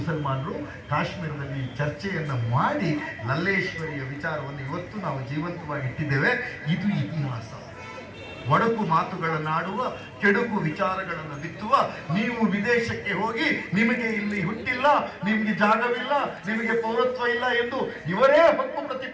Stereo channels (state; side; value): identical; both; correlation 1.00